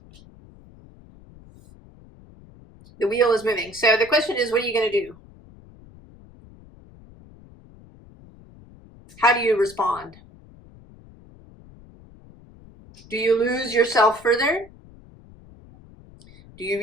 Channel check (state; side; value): noise; left; rumble, 23 dB below the sound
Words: The wheel is moving. So the question is, what are you going to do? How do you respond? Do you lose yourself further? Do you